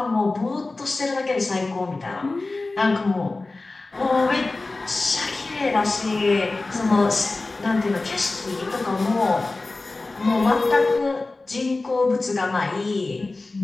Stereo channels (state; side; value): quieter; right; 3.3 dB